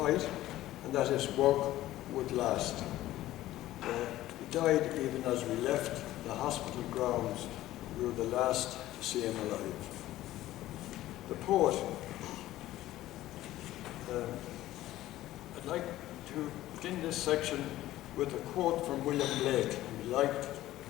and that his work would last. He died even as we left the hospital grounds. We were the last to see him alive. The poet. I'd like to begin this section with a quote from William Blake,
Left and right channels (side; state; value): right; quieter; 15.1 dB